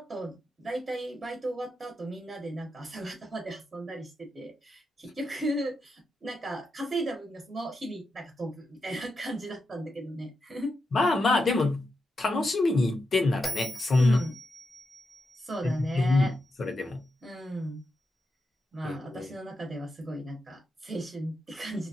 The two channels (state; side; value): normal; both; correlation 0.87